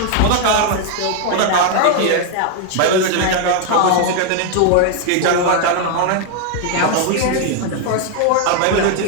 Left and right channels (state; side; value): different; both; correlation 0.00